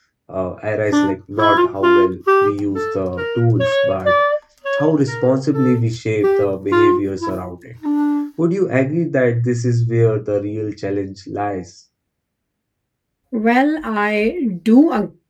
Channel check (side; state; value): both; identical; correlation 1.00